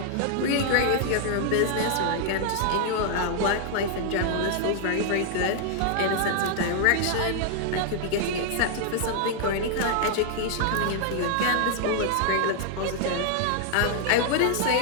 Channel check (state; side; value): different; both; correlation 0.00